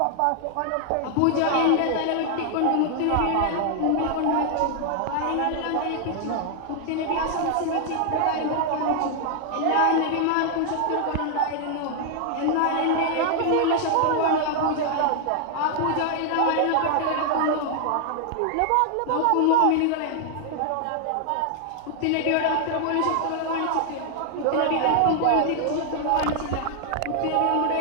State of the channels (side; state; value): both; different; correlation 0.00